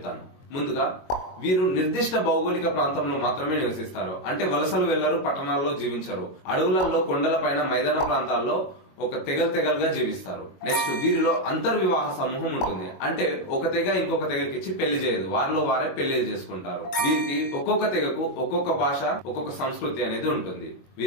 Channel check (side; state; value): right; late; 22 ms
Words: ముందుగా, వీరు నిర్దిష్ట భౌగోళిక ప్రాంతంలో మాత్రమే నివసిస్తారు. అంటే వలసలు వెళ్లరు, పట్టణాల్లో జీవించరు. అడవులలో, కొండలపైన, మైదాన ప్రాంతాల్లో ఒక తెగలుగా జీవిస్తారు. నెక్స్ట్, వీరిలో అంతర్వివాహ సమూహం ఉంటుంది. అంటే ఒక తెగ ఇంకొక తెగకిచ్చి పెళ్లి చేయదు, వారిలో వారే పెళ్లి చేసుకుంటారు. వీరికి ఒక్కొక్క తెగకు ఒక్కొక్క భాష, ఒక్కొక్క సంస్కృతి అనేది ఉంటుంది.